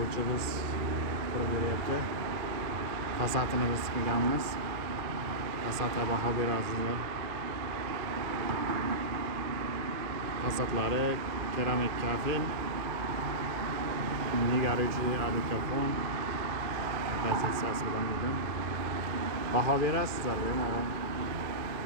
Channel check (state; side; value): late; left; 2.4 ms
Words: qurib beryapti. Fasadini biz qilganmiz. Fasadga baho berasizlar. Fasadlari keramik kafel, nigaruvchi alikafon pozitsiyasi bilan bo'lgan. Baho berasizlar, bemalol.